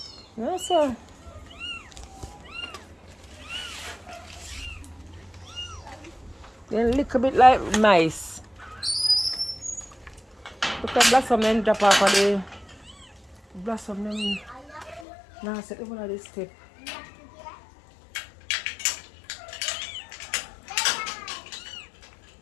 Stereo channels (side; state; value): right; drops out; at 15.1 s